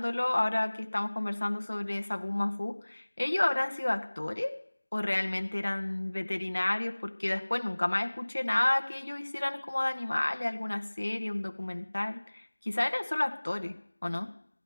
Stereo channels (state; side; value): inverted; both; correlation -1.00